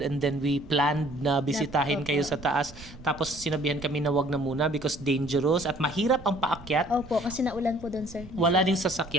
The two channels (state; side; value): noise; right; rumble, 18 dB below the sound